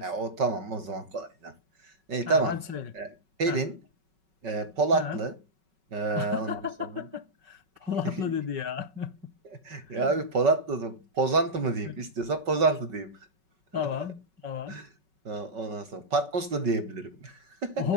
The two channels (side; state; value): left; late; 5.3 ms